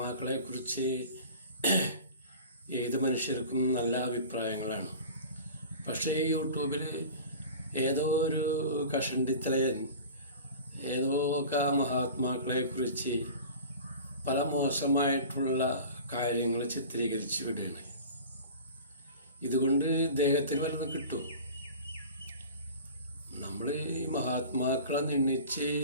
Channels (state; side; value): inverted; both; correlation -0.38